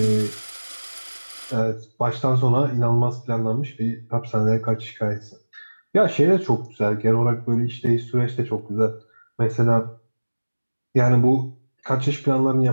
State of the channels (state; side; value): inverted; both; correlation -1.00